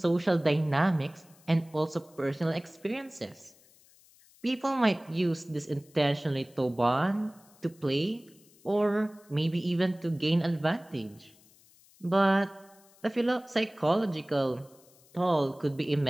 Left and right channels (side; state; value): left; noise; hiss, 28 dB below the sound